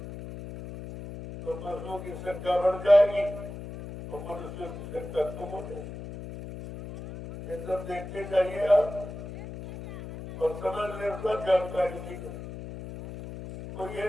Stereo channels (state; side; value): noise; left; hum, 10 dB below the sound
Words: तो पशुओं की संख्या बढ़ जाएगी और मनुष्यों की संख्या कम हो जाएगी। ये सब देखते जाइए आप और समझ ले, सब जानकारी नहीं है। तो ये